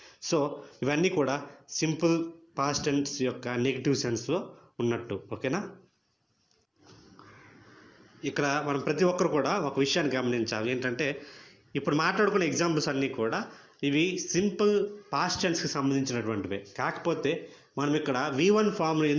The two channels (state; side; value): identical; both; correlation 1.00